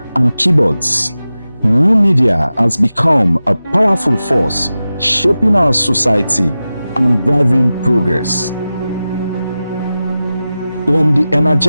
and keyboards, new media has become a powerful force shaping our society and driving progress. From the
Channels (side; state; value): both; inverted; correlation -0.94